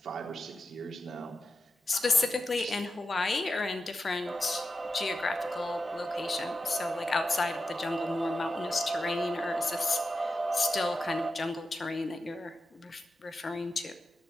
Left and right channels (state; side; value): normal; both; correlation 0.90